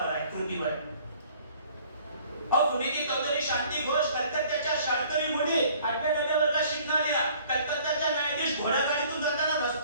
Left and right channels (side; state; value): both; inverted; correlation -0.55